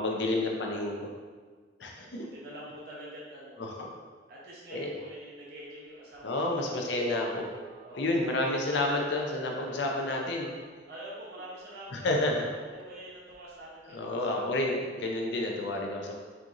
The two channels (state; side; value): normal; both; correlation 0.25